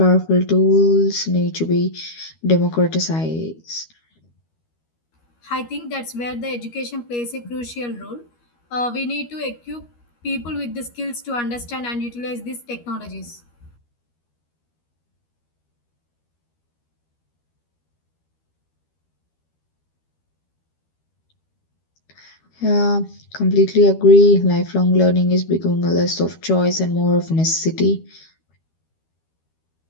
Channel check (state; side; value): late; right; 13 ms